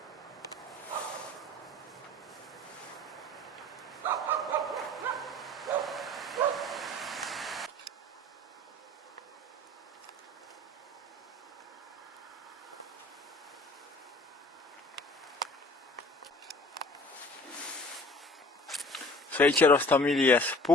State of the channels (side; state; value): both; normal; correlation 0.48